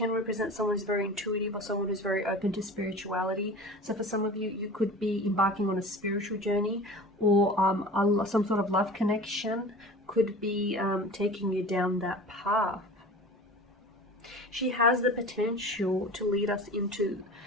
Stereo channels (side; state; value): both; normal; correlation 0.37